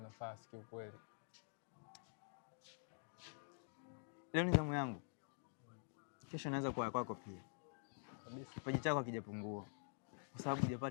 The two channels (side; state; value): right; silent; digital silence